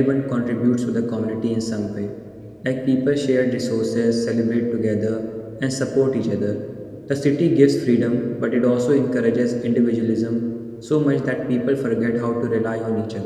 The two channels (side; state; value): both; identical; correlation 1.00